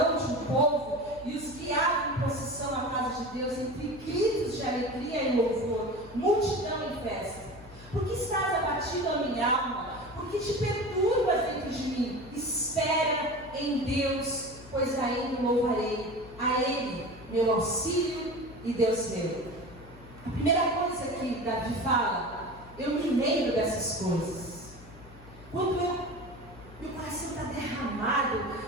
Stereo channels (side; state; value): left; noise; hum, 20 dB below the sound